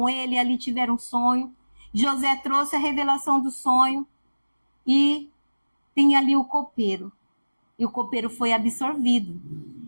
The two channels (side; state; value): both; inverted; correlation -1.00